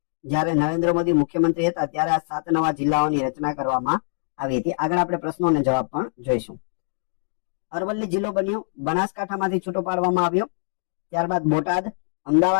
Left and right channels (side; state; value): right; silent; digital silence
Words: જ્યારે નરેન્દ્ર મોદી મુખ્યમંત્રી હતા ત્યારે આ 7 નવા જિલ્લાઓની રચના કરવામાં આવી હતી. આગળ આપણે પ્રશ્નો અને જવાબ પણ જોઈશું. અરવલ્લી જિલ્લો બન્યો, બનાસકાંઠામાંથી છૂટો પાડવામાં આવ્યો. ત્યારબાદ બોટાદ,